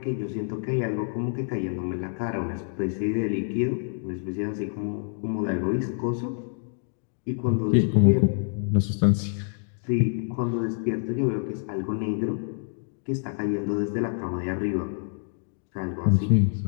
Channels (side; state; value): right; silent; digital silence